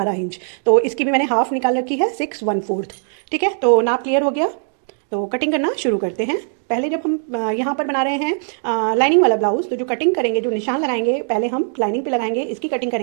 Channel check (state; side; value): silent; left; 65 dB below the other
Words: इंच। तो इसकी भी मैंने हाफ निकाल रखी है, 6/1/4, ठीक है। तो नाप क्लियर हो गया, तो कटिंग करना शुरू करते हैं। पहले जब हम यहाँ पर बना रहे हैं लाइनिंग वाला ब्लाउज, तो जो कटिंग करेंगे, जो निशान लगाएंगे, पहले हम लाइनिंग पे लगाएंगे, इसकी कटिंग